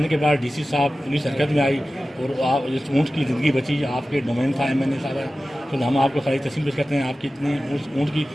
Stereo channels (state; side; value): normal; both; correlation 0.95